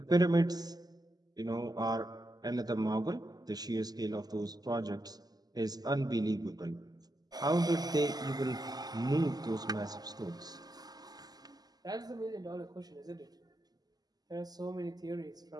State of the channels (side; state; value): left; late; 0.19 ms